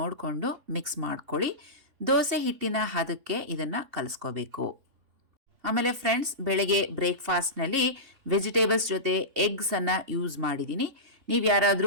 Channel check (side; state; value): left; late; 3.2 ms